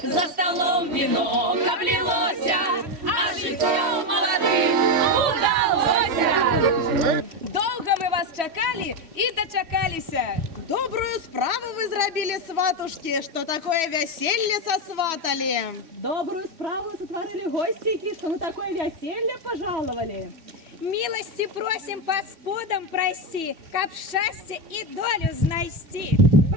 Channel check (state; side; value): late; left; 3.1 ms